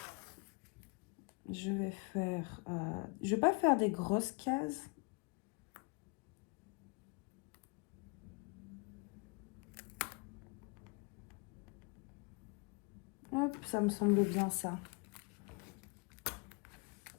je vais faire... je vais pas faire des grosses cases. Hop, ça me semble bien ça.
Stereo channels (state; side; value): quieter; right; 30.5 dB